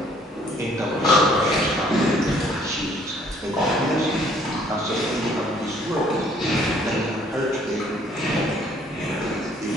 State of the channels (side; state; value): both; normal; correlation 0.61